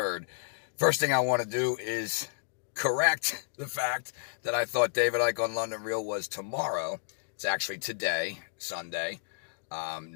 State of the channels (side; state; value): right; silent; digital silence